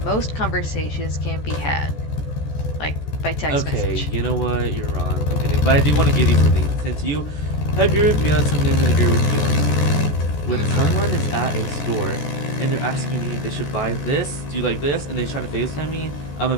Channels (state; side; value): late; right; 14 ms